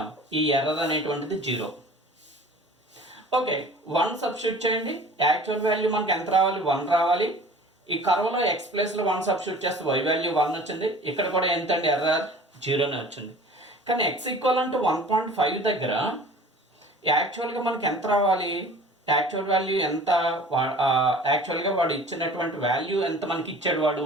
ఈ ఎర్రర్ అనేటువంటిది 0. ఓకే, 1 సబ్స్టిట్యూట్ చేయండి. యాక్చువల్ వాల్యూ మనకి ఎంత రావాలి? 1 రావాలి. ఈ కర్వ్లో ఎక్స్ ప్లేస్లో 1 సబ్స్టిట్యూట్ చేస్తే వై వాల్యూ 1 వచ్చింది. ఇక్కడ కూడా ఎంతండి? ఎర్రర్ 0నే వచ్చింది. కానీ ఎక్స్ ఈక్వల్ అంటే 1.5 దగ్గర యాక్చువల్గా మనకి ఎంత రావాలి? యాక్చువల్ వాల్యూ ఎంత? యాక్చువల్గా వాడు ఇచ్చినటువంటి వాల్యూ ఎంత మనకి ఇచ్చాడు వాడు?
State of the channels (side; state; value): both; normal; correlation 0.44